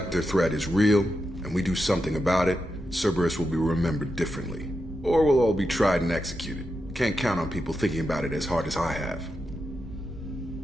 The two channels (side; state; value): both; normal; correlation 0.87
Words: threat is real, and we do something about it, Cerberus will be remembered differently. Or we'll all be tried and executed. Can't count on people thinking about it as hard as I have.